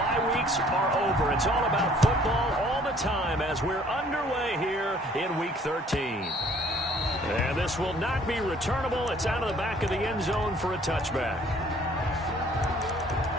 weeks are over. It's all about football all the time as we're underway here in Week 13. And this will not be returnable. It's out of the back of the end zone for a touchback.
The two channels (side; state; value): both; normal; correlation 0.58